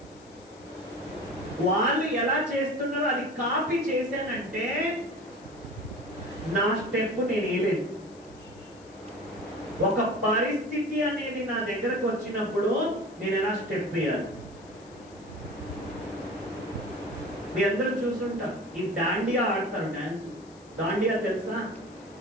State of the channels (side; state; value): left; noise; hiss, 26 dB below the sound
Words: వాళ్ళు ఎలా చేస్తున్నారో అది కాపీ చేశానంటే నా స్టెప్ నేను వేయలేదు. ఒక పరిస్థితి అనేది నా దగ్గరకు వచ్చినప్పుడు నేను ఎలా స్టెప్ వేయాలి? మీ అందరూ చూసుంటారు, ఈ దాండియా ఆడతారు, డాన్స్. దాండియా తెలుసా?